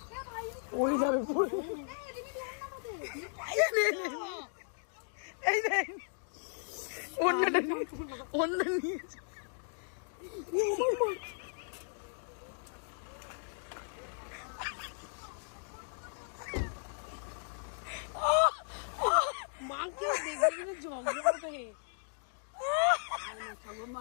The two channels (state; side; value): silent; right; digital silence